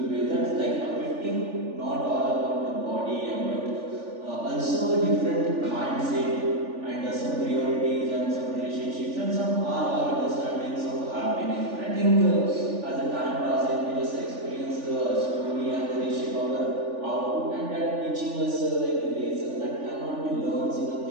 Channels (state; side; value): late; left; 3.4 ms